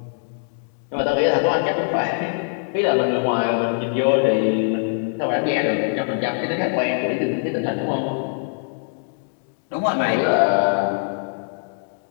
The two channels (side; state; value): right; silent; digital silence